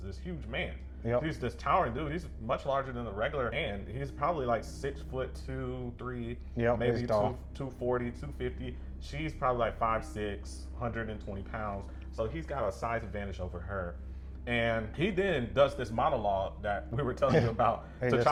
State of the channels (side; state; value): both; identical; correlation 1.00